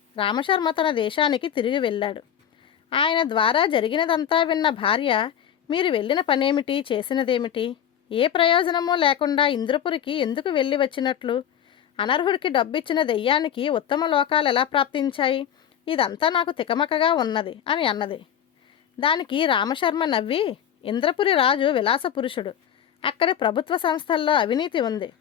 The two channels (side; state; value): right; quieter; 9.4 dB